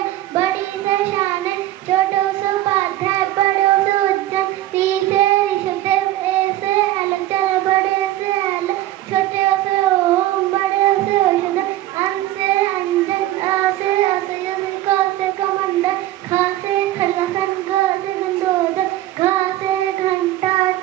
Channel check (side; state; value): left; quieter; 14.9 dB